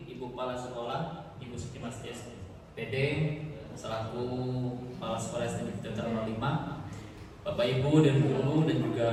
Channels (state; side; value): identical; both; correlation 1.00